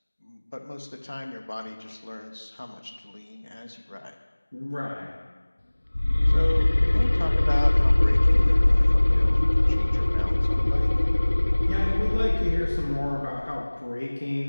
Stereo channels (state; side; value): inverted; both; correlation -1.00